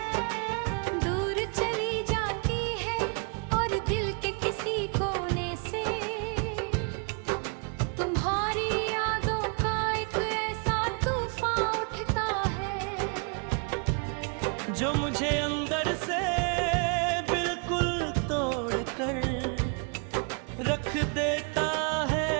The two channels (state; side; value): quieter; left; 36.9 dB